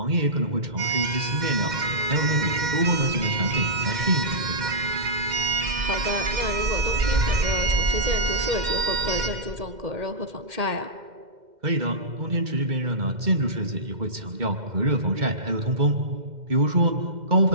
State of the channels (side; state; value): left; late; 2.1 ms